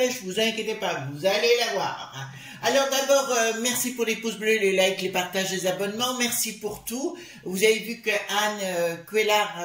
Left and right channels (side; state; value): both; identical; correlation 1.00